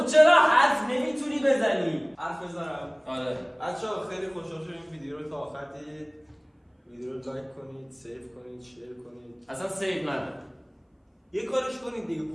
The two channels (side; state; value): both; identical; correlation 1.00